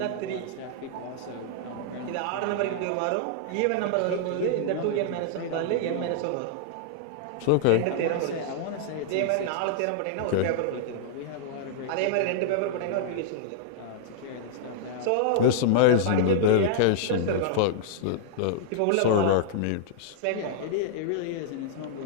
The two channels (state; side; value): different; both; correlation -0.01